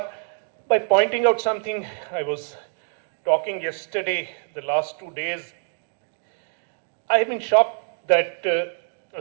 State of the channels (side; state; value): left; silent; 62 dB below the other